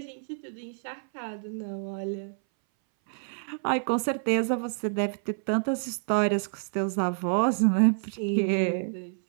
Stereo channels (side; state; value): left; silent; 59 dB below the other